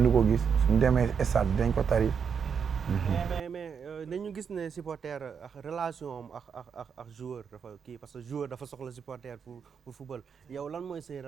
du ko gis suñu demee stade dañ ko tari. mais dañu gis ne supporter ak relation am ak joueur dafa kii parce que joueur dafa soxla supporter pour football yow lan mooy seen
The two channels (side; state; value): left; quieter; 6.7 dB